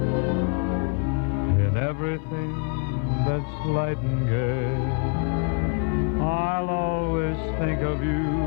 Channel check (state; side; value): quieter; right; 36.9 dB